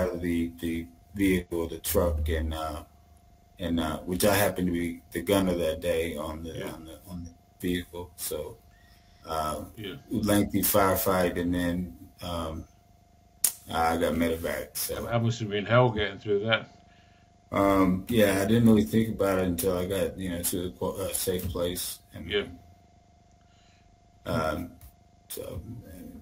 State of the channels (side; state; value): both; identical; correlation 1.00